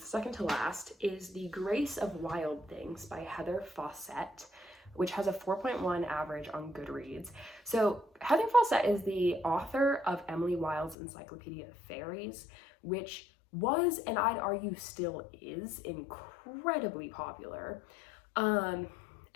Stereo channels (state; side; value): drops out; right; at 11.0 s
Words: second to last, is The Grace of Wild Things by Heather Fawcett, which has a 4.1 average on Goodreads. So Heather Fawcett is the author of Emily Wilde's Encyclopedia of Fairies, which was, and I'd argue still is, incredibly popular. And